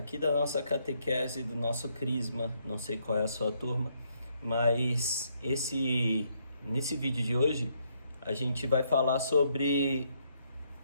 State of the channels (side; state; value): both; inverted; correlation -0.74